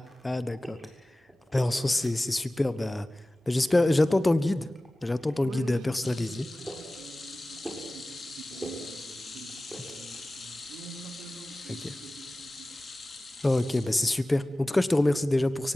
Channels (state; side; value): normal; both; correlation 0.97